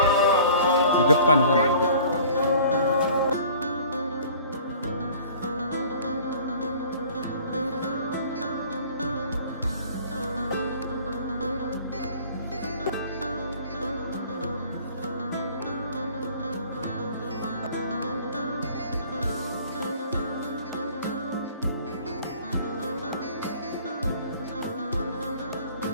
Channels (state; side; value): inverted; both; correlation -0.49